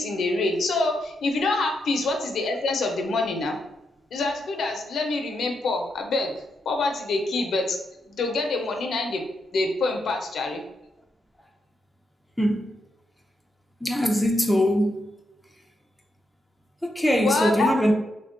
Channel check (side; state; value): both; normal; correlation 0.83